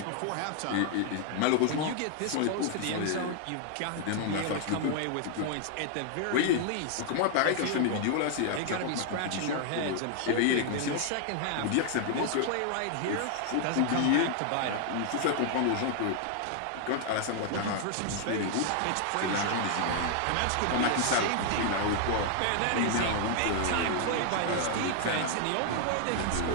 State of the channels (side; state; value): both; different; correlation 0.00